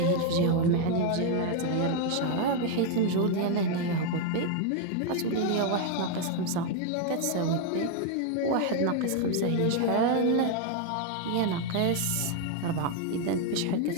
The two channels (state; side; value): different; both; correlation 0.01